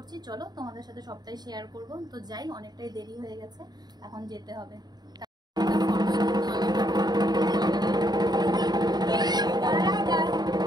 চলো তোমাদের সাথে সবটাই শেয়ার করব। তো যাই, অনেকটাই দেরি হয়ে গেছে, এখন যেতে হবে।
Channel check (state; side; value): late; left; 0.20 ms